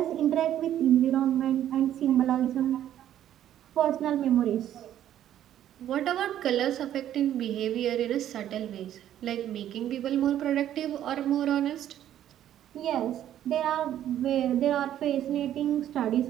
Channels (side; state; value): left; quieter; 11.4 dB